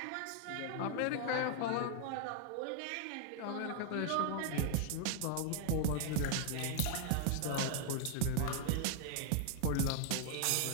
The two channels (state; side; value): different; both; correlation 0.00